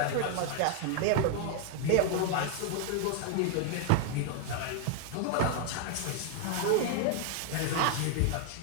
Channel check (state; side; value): different; both; correlation 0.00